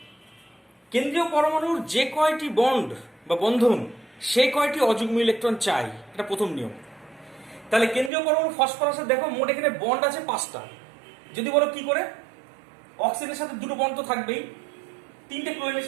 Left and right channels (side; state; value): left; drops out; at 8.1 s